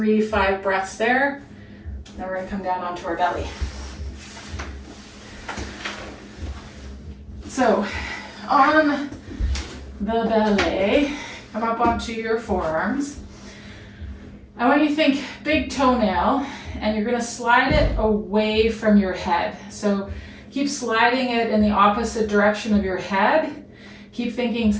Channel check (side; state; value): both; identical; correlation 1.00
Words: 5 breaths there. Then we're gonna come down onto our belly. So, on the belly, come up onto your forearms. I want you to think big toenail, and you're gonna slide it away from your head. So keep sliding it in the opposite direction of your head. Keep thinking,